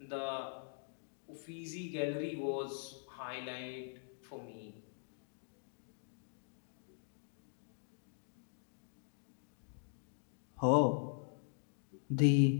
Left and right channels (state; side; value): silent; right; digital silence